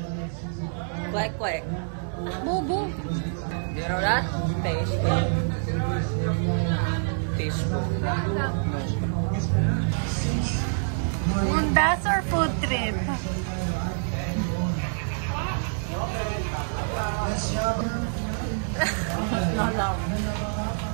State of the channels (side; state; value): left; silent; digital silence